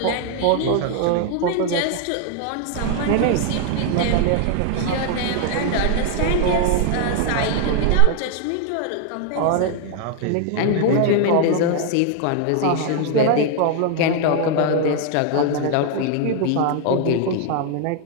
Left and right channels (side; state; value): both; different; correlation 0.00